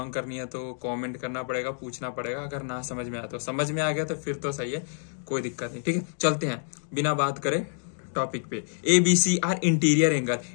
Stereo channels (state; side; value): silent; right; digital silence